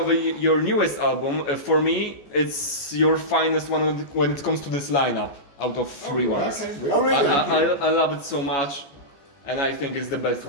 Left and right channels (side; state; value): right; late; 14 ms